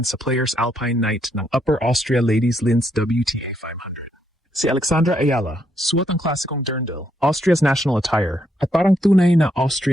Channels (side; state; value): both; normal; correlation 0.76